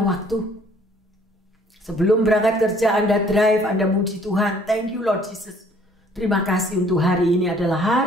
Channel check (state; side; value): normal; both; correlation 0.59